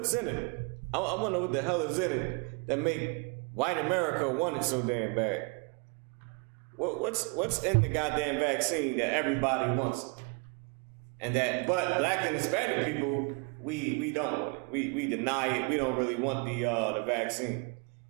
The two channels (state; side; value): quieter; left; 33.1 dB